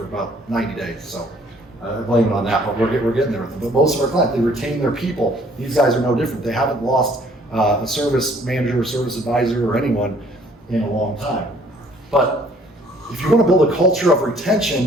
about 90 days, so I blame it on that, but we're getting there with them. But most of our clients, they retain their people. These guys are no different. They haven't lost a service manager or service advisor or anyone in a long time. But if you want to build a culture of retention,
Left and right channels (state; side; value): normal; both; correlation 0.59